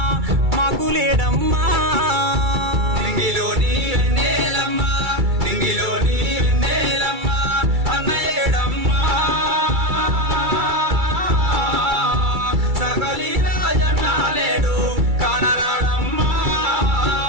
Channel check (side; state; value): left; late; 2.3 ms